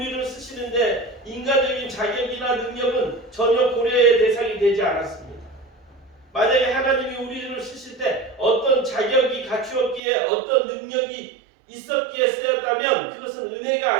쓰시는데 인간적인 자격이나 능력은 전혀 고려의 대상이 되지 않았습니다. 만약에 하나님이 우리를 쓰실 때 어떤 자격이 갖추었기에 어떤 능력이 있었기에 쓰였다면 그것은 은혜가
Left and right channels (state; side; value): drops out; left; at 10.0 s